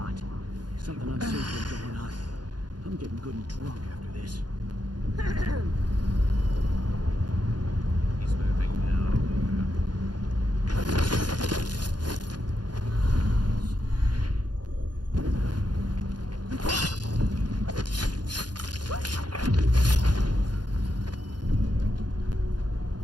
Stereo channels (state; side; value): late; left; 0.70 ms